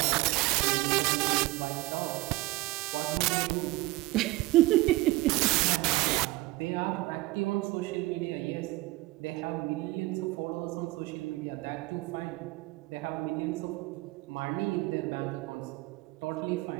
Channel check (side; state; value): left; quieter; 20.2 dB